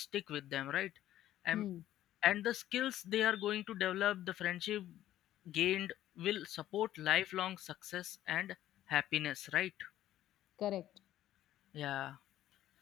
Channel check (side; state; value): right; quieter; 13.0 dB